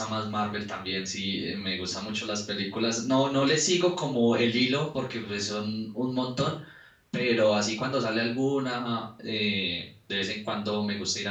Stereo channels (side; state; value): both; identical; correlation 1.00